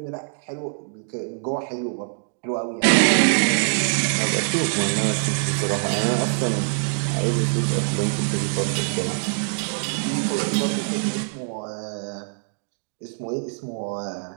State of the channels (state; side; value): silent; left; digital silence